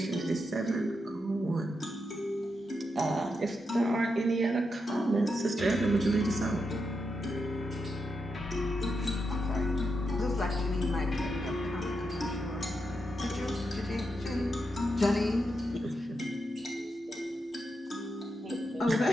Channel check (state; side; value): normal; both; correlation 0.85